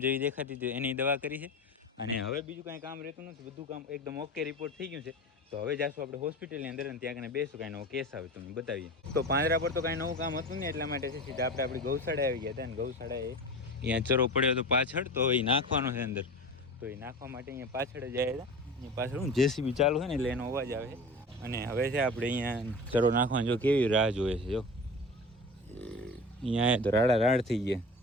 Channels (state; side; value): normal; both; correlation 0.33